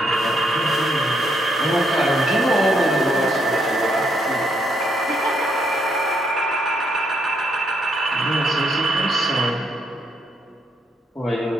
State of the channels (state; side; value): normal; both; correlation 0.75